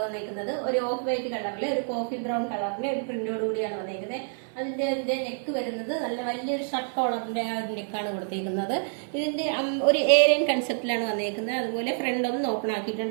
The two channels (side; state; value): left; silent; 60 dB below the other